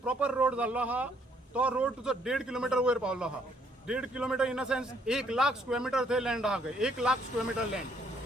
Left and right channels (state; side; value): normal; both; correlation 0.67